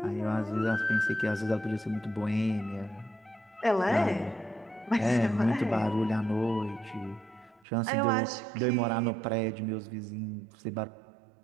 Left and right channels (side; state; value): left; drops out; at 7.7 s